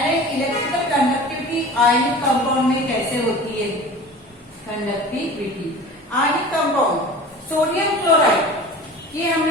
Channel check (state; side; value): normal; both; correlation 0.38